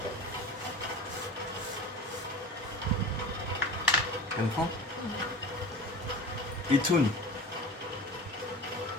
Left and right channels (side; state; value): both; normal; correlation 0.34